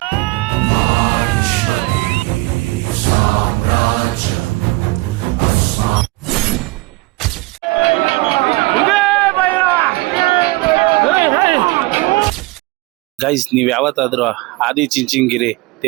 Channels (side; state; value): left; quieter; 22.1 dB